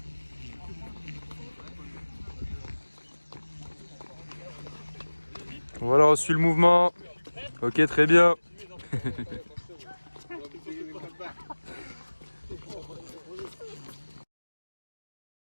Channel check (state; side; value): inverted; both; correlation -1.00